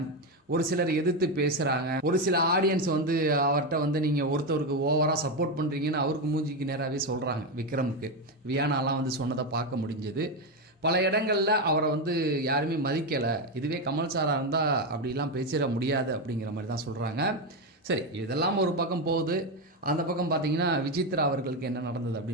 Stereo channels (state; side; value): normal; both; correlation 0.11